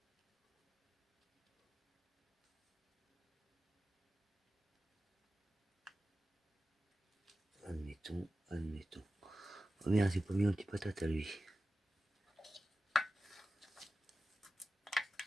Admettons. Oh merde, j'ai pas mis un petit patate à lui.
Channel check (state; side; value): normal; both; correlation 0.93